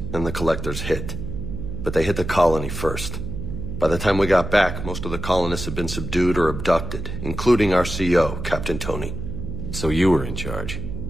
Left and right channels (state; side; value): noise; right; hum, 6 dB below the sound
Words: and the collectors hit. But they hit the colony first. By the time we got back, most of the colonists had been subdued or abducted, including our CO, Captain Tony. So you were in charge?